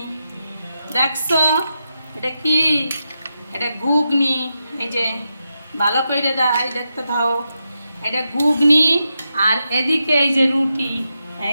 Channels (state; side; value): inverted; both; correlation -0.87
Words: দেখছো, এটা কি? এটা ঘুগনি। এই যে ভালো করে দেখতে থাও, এটা ঘুগনি। আর এদিকে এই যে রুটি,